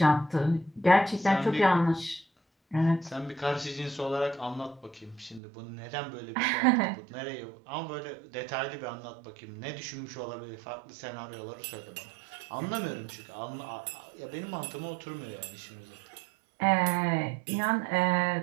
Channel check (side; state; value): left; drops out; at 5.4 s